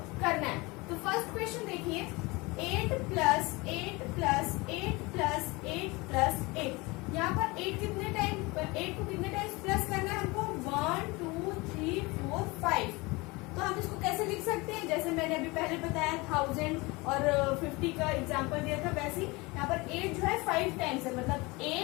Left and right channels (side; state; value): right; quieter; 24.3 dB